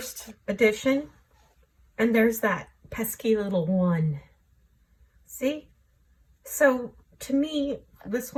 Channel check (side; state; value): both; identical; correlation 1.00